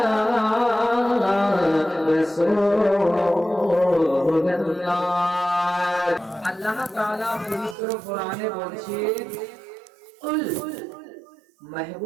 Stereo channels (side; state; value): left; drops out; at 7.8 s